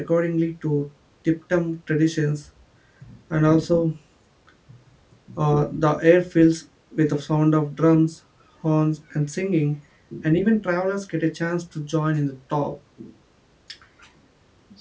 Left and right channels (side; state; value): both; identical; correlation 1.00